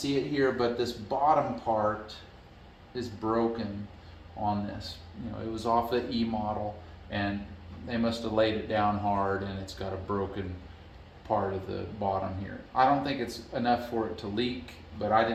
it here, but this bottom part is broken on this. It was off the E model, and they must have laid it down hard, and it's got a broken part of the bottom here. I don't think it's enough for it to leak, but I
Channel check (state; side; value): identical; both; correlation 1.00